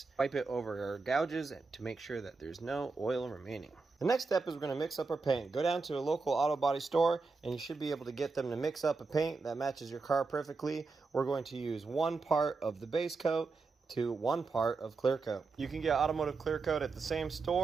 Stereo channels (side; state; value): left; quieter; 4.2 dB